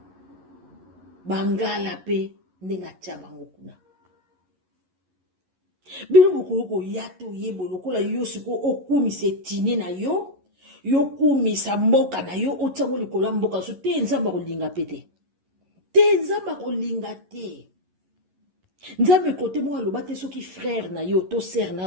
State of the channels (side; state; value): left; late; 11 ms